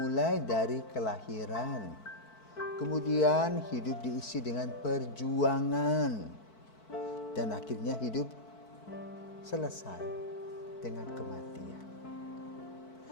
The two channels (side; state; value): right; late; 4.5 ms